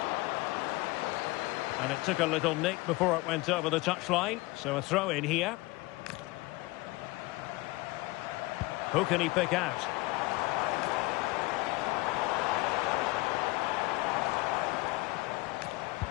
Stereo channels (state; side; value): quieter; right; 21.9 dB